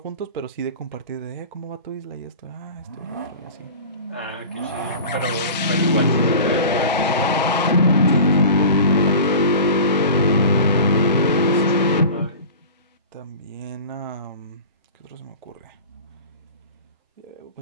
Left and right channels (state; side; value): inverted; both; correlation -0.37